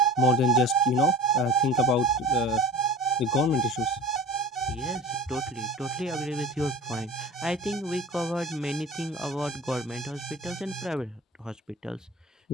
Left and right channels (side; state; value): both; normal; correlation 0.39